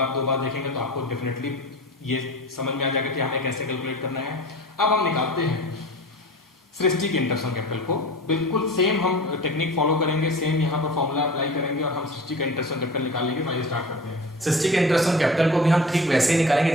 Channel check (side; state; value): both; normal; correlation 0.37